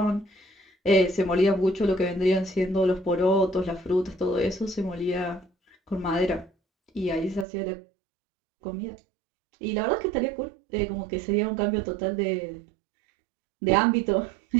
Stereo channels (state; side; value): drops out; left; at 7.5 s